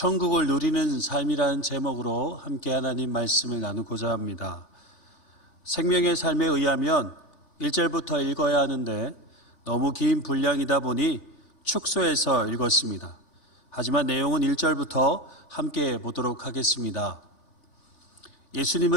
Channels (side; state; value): right; late; 3.3 ms